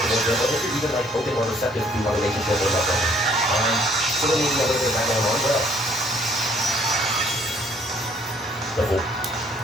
towards them, or if you're even like open or receptive to a relationship or love. So we need to know a little bit of that going on. What else? The pool.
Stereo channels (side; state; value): both; normal; correlation 0.61